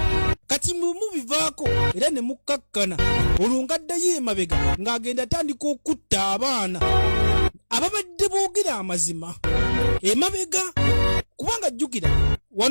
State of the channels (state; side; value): inverted; both; correlation -1.00